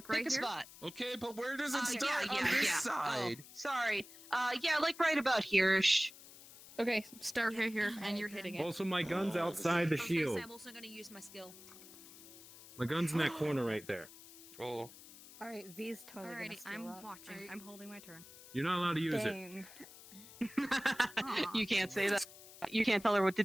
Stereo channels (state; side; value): noise; left; hiss, 18 dB below the sound